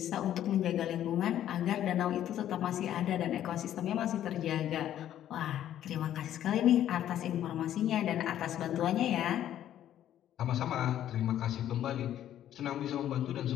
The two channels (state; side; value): quieter; right; 11.4 dB